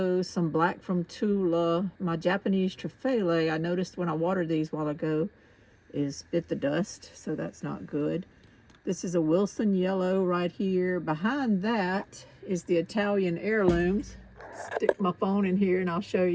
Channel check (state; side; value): identical; both; correlation 1.00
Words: some black from Tula. My Japanese Truffaut, I noticed when I watered these a while ago, is bit the dust, so that's not good. This is a Wilson yellow right here. Behind that is the Italian heirlooms. Stick my phone in here and I'll show